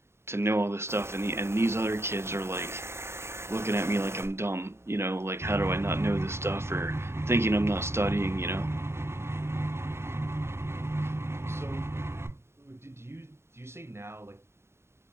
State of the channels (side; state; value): left; late; 0.12 ms